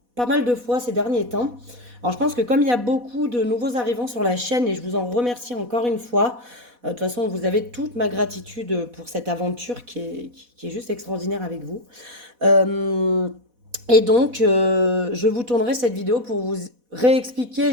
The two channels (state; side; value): late; left; 4.1 ms